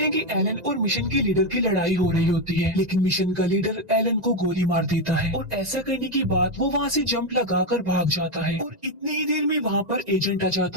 कि एलन और मिशन के लीडर की लड़ाई हो रही होती है, लेकिन मिशन का लीडर एलन को गोली मार देता है, और ऐसा करने के बाद वो वहाँ से जंप लगाकर भाग जाता है। और इतनी ही देर में वहाँ पर एजेंट आ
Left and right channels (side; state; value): left; late; 1.9 ms